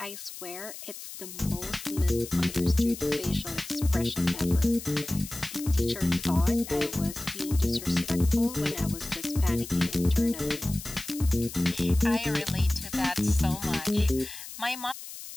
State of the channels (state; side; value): noise; left; hiss, 12 dB below the sound